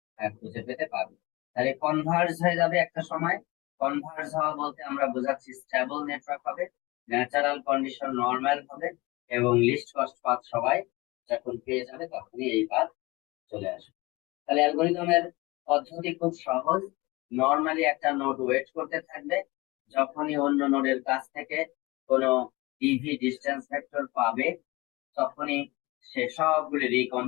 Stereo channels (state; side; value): quieter; right; 22.6 dB